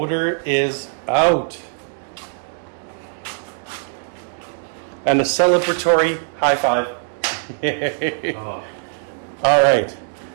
is out. And a celebratory high five. Oh. All right.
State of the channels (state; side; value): silent; left; digital silence